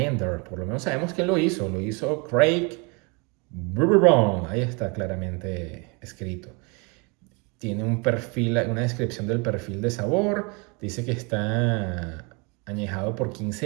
Por lo menos sabemos quién lo hizo. Lo hizo Craig Bourbon. Ahí está claramente escrito. Tiene un perfil, una descripción del perfil de sabor. Dice que está añejado por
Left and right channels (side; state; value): left; quieter; 30.8 dB